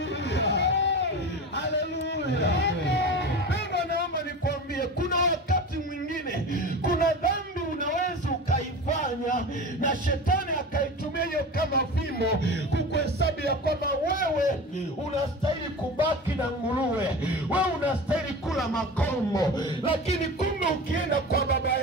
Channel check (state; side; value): normal; both; correlation 0.31